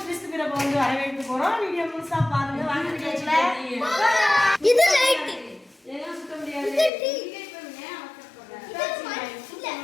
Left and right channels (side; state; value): right; drops out; at 6.9 s